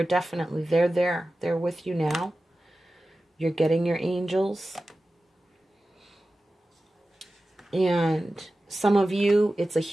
definitely, they're there. They're with you now. You're getting your angels. And some of you, it's a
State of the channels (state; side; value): normal; both; correlation 0.95